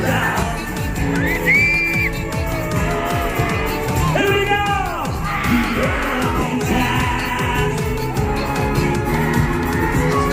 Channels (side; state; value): both; identical; correlation 1.00